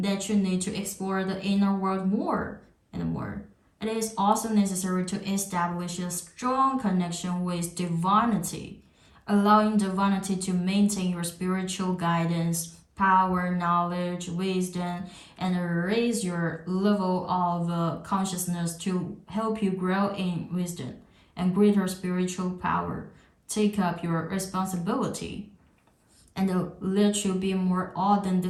you need to explore the inner world more and more. It is also necessary to establish a strong connection with divinity, allowing divinity to maintain your spiritual guidance, power, knowledge, wisdom, and raise your level of consciousness to help you grow in wisdom and greater spiritual power. Take up your responsibility and let you be more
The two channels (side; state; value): both; identical; correlation 1.00